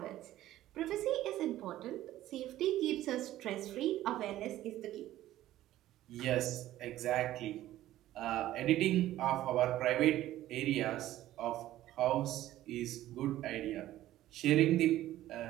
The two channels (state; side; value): quieter; left; 14.2 dB